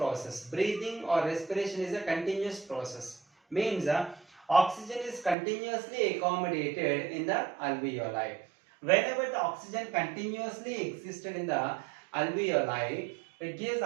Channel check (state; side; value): drops out; left; at 5.4 s